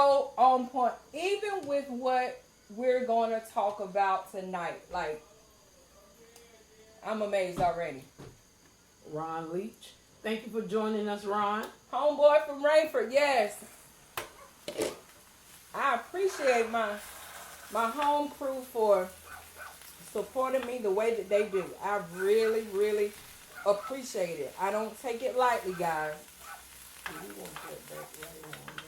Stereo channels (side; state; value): both; identical; correlation 1.00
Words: on point. Even with what we're going to talk about tonight. Like, I'm amazed already. Ron Leach. Thank you for joining us, Ron. Homeboy from Rainford, yes. I appreciate my home crew for supporting me the way that they do. I really, really appreciate it. I don't take it lightly, guys. We want that back right on.